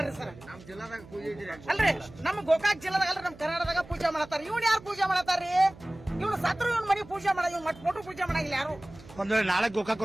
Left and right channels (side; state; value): right; noise; hum, 20 dB below the sound